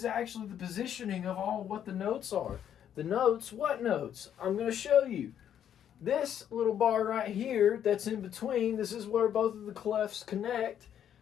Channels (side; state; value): right; quieter; 9.6 dB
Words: actually the positioning of all what the notes are. The notes, what notes? I'm going to show you. This little bar right here that's in between, this is where both of the clefs connect.